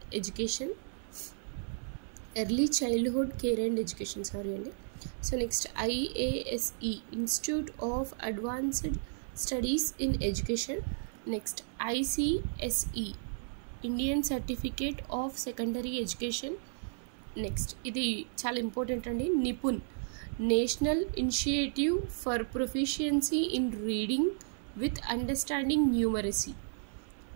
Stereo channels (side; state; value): left; silent; 55 dB below the other